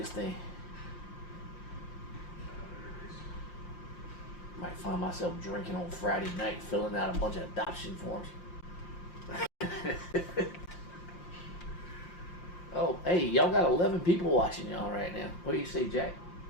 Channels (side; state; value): right; late; 5.7 ms